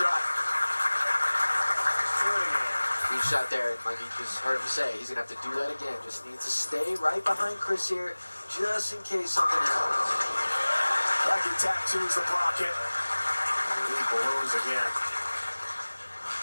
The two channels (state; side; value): inverted; both; correlation -1.00